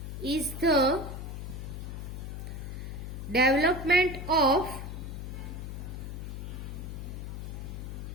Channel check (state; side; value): noise; left; hum, 6 dB below the sound